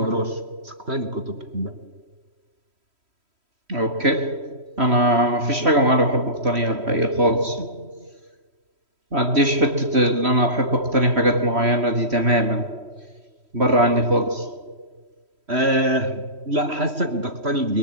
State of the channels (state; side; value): late; left; 3.1 ms